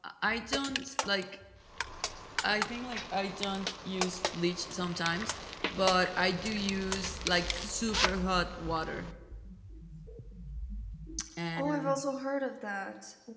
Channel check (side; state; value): both; identical; correlation 1.00